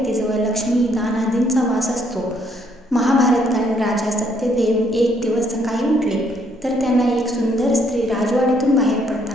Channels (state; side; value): normal; both; correlation 0.69